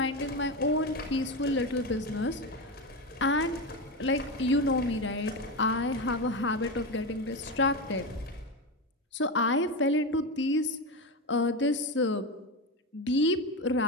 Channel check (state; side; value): normal; both; correlation 0.17